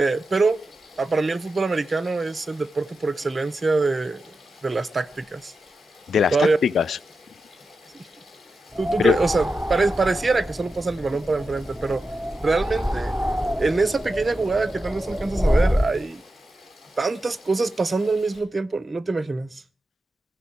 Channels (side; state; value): both; normal; correlation 0.90